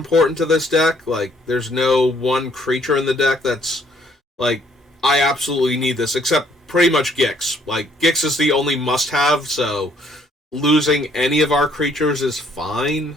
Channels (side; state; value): both; normal; correlation 0.65